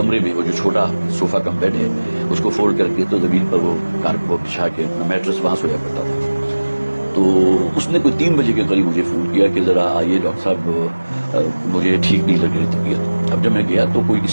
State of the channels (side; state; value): both; inverted; correlation -1.00